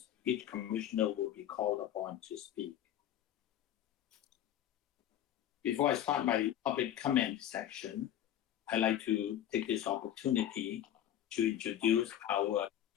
each commissioner will be called upon to speak. Before I start my public comment section, I'd like to take this opportunity to introduce our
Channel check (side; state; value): right; quieter; 11.3 dB